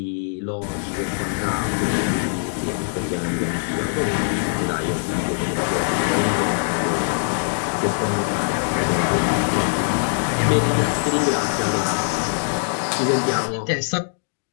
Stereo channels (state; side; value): silent; right; digital silence